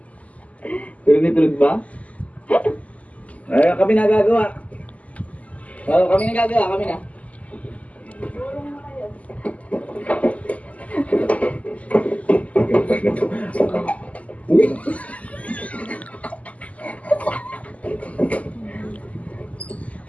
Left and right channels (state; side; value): late; right; 0.070 ms